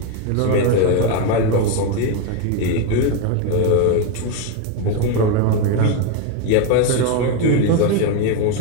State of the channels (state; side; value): different; both; correlation 0.02